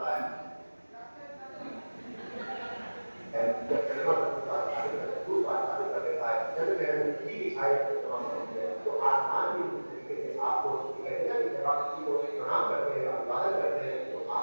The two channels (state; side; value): inverted; both; correlation -1.00